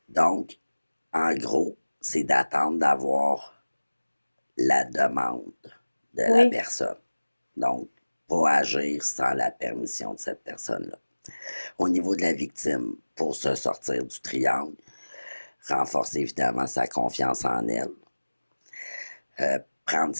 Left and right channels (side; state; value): both; inverted; correlation -1.00